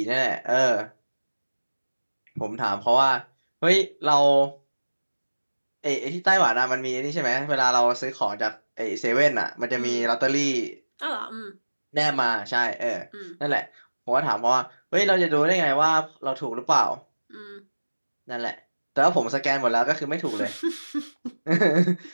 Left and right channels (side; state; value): both; inverted; correlation -1.00